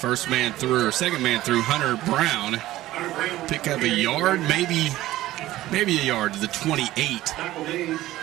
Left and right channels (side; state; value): left; quieter; 15.6 dB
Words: man through, or second man through, Hunter Brown. Pick up a yard, maybe a yard to the 28.